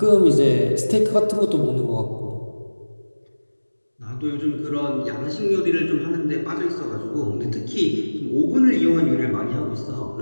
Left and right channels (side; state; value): both; inverted; correlation -1.00